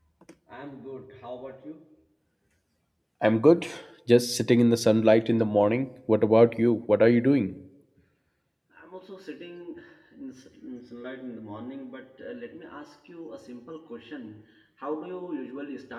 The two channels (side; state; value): both; identical; correlation 1.00